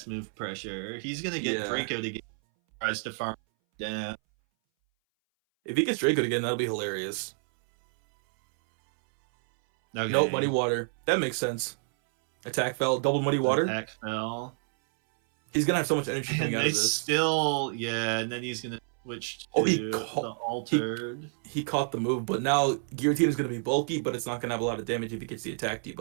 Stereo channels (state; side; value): silent; left; 59 dB below the other